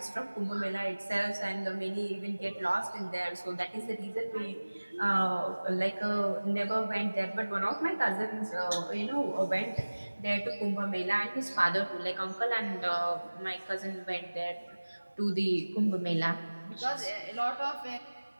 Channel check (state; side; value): inverted; both; correlation -1.00